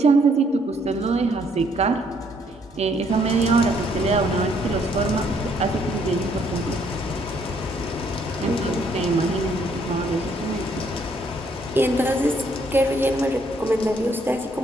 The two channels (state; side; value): normal; both; correlation 0.68